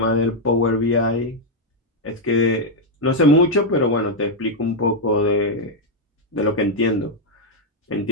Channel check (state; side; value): normal; both; correlation -0.01